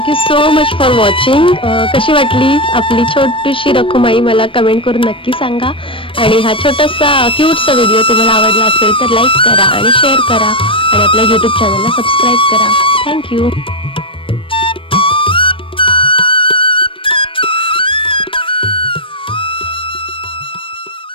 Thank you so much for watching. कशी वाटली आपली छोटीशी रखुमाई मला कमेंट करून नक्की सांगा. आणि हा छोटासा क्यूटसा व्हिडिओ तुम्हाला आवडला असेल तर लाईक करा आणि शेअर करा आणि आपल्या यूट्यूब चॅनलला सबस्क्राईब करा. थँक्यू.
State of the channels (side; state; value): right; late; 0.25 ms